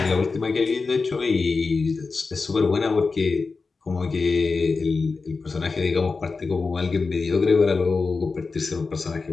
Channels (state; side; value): quieter; right; 4.3 dB